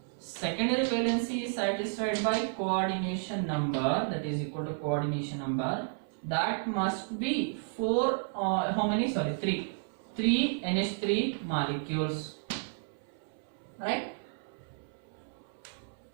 Secondary valency is satisfied by coordination number, that is equal to coordination number, that must be 3 NH3 molecules, right?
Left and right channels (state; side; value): silent; left; 56 dB below the other